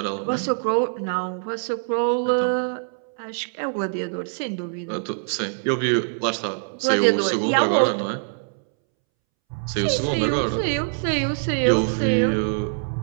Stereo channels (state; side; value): silent; left; 63 dB below the other